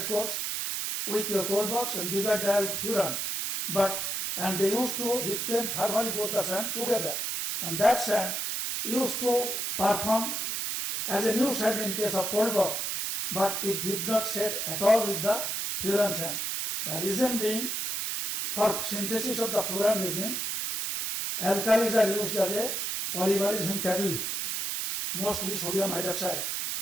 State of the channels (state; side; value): noise; right; hiss, 2 dB below the sound